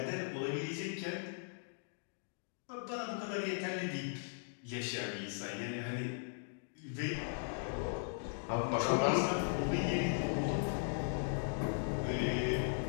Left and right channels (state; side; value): silent; right; digital silence